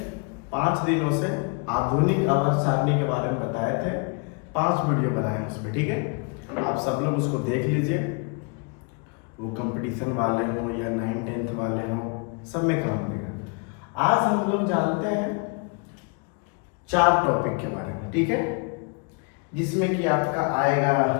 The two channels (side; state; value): right; quieter; 34.5 dB